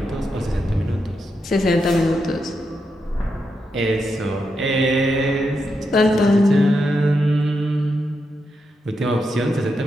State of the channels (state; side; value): normal; both; correlation 0.84